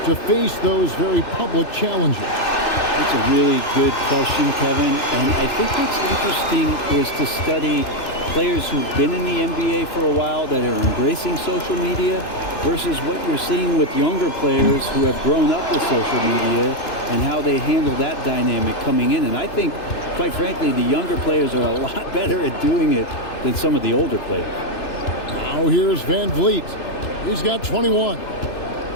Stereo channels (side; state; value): right; late; 2.9 ms